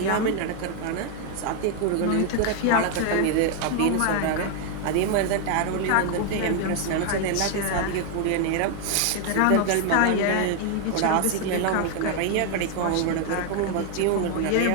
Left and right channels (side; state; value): both; different; correlation 0.00